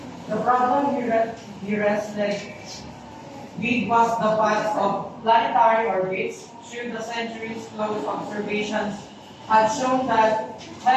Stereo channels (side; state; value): both; identical; correlation 1.00